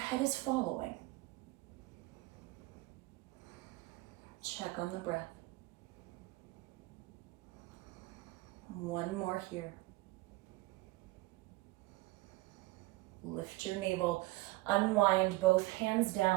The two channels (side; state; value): left; quieter; 20.4 dB